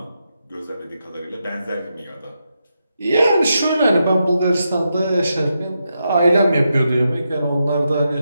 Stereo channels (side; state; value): both; inverted; correlation -0.85